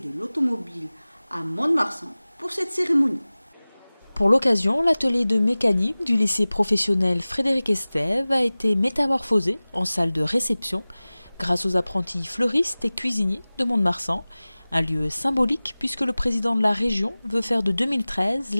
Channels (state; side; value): inverted; both; correlation -0.99